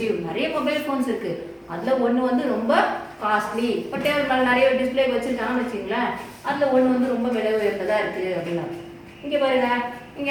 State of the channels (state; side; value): identical; both; correlation 1.00